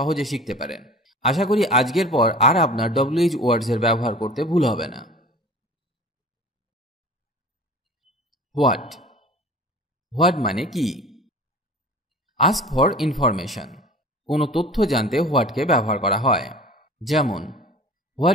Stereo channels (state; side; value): normal; both; correlation 0.41